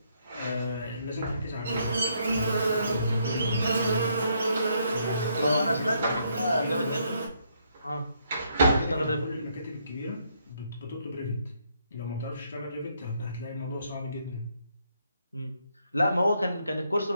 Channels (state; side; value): inverted; both; correlation -0.73